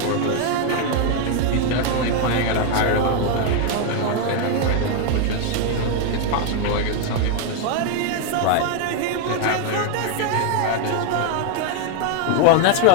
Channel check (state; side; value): different; both; correlation 0.01